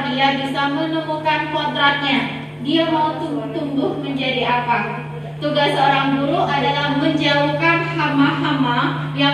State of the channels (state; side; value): identical; both; correlation 1.00